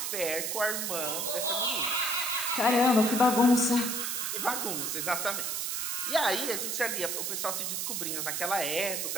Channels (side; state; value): right; noise; hiss, 1 dB below the sound